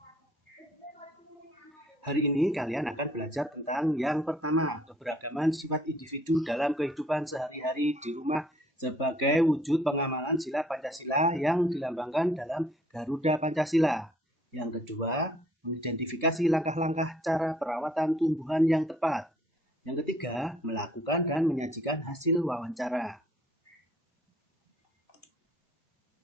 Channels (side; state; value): both; normal; correlation 0.61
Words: Hari ini kalian akan belajar tentang yang pertama, keberagaman sifat individu dalam kehidupan sehari-hari di rumah sebagai wujud pengamalan sila Pancasila yang dilambangkan dalam Garuda Pancasila. Yang kedua, mengidentifikasi langkah-langkah cara perawatan tumbuhan yang tepat. Yang ketiga, melakukan dan menyajikan hasil wawancara.